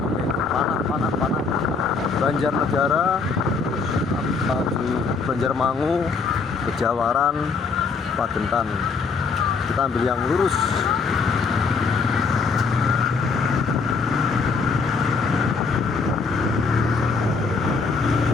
Panah. Banjarnegara, Banjarmangu, Kejawaran, Pagentan. Kita ambil yang lurus.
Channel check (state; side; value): quieter; right; 4.7 dB